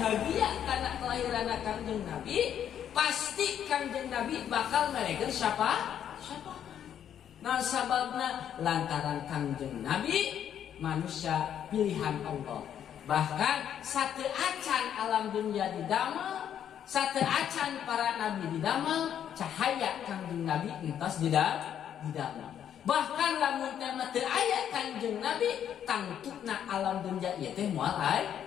karena kelahiran Kangjeng Nabi, pasti Kangjeng Nabi bakal meregeun siapa? Nah sababna lantaran Kangjeng Nabi manusia pilihan Allah. Bahkan sate acan alam dunia didamel, sate acan para nabi didamel, cahaya Kangjeng Nabi entos didamel. Bahkan lamun teh teu aya Kangjeng Nabi, tangtukna alam dunia ieu teh moal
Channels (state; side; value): quieter; right; 9.6 dB